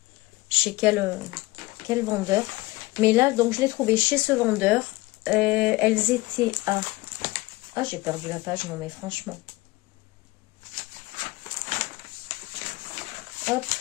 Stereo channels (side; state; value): right; quieter; 21.2 dB